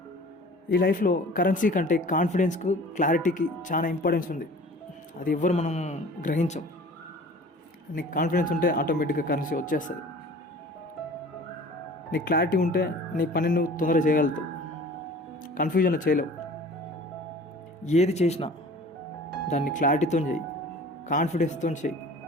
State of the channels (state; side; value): normal; both; correlation 0.44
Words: ఈ లైఫ్లో కరెన్సీ కంటే కాన్ఫిడెన్స్కు, క్లారిటీకి చాలా ఇంపార్టెన్స్ ఉంది. అది ఎవ్వరు మనం గ్రహించం. నీకు కాన్ఫిడెన్స్ ఉంటే ఆటోమేటిక్గా కరెన్సీ వచ్చేస్తుంది. నీకు క్లారిటీ ఉంటే నీ పని నువ్వు తొందరగా చేయగలుగుతావు, కన్ఫ్యూజన్లో చేయలేవు. ఏది చేసినా దాన్ని క్లారిటీతో చేయి, కాన్ఫిడెన్స్తో చేయి.